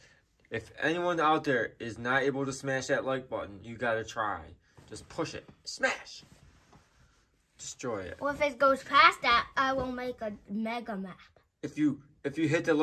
If anyone out there is not able to smash that like button, you got to try. Just push it. Smash. Destroy it. Well, if it goes past that, I will make a mega map. If you hit the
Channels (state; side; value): identical; both; correlation 1.00